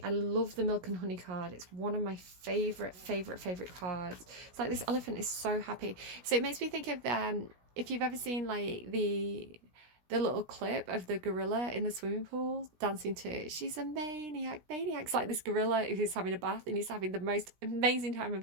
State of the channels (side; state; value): left; late; 16 ms